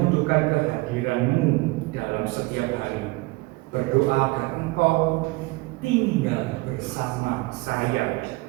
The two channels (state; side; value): quieter; left; 23.3 dB